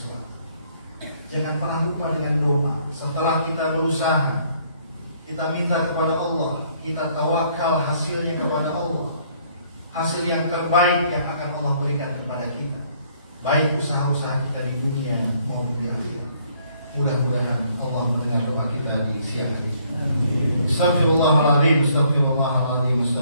Jangan pernah lupa dengan doa. Setelah kita berusaha, kita minta kepada Allah, kita tawakal hasilnya kepada Allah. Hasil yang terbaik yang akan Allah berikan kepada kita, baik usaha-usaha kita di dunia maupun di akhirat. Mudah-mudahan Allah mendengar doa kita di siang hari. Astaghfirullahaladzim, astaghfirullahaladzim,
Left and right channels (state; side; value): inverted; both; correlation -0.65